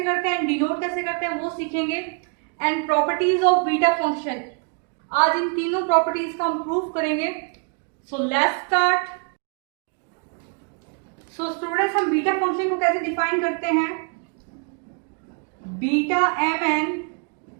करते हैं, डिनोट कैसे करते हैं वो सीखेंगे। And properties of beta function, आज इन तीनों प्रॉपर्टीज का हम प्रूफ करेंगे। So let's start. So students, हम बीटा फंक्शन को कैसे डिफाइन करते हैं। Beta mn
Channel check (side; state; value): left; quieter; 37.9 dB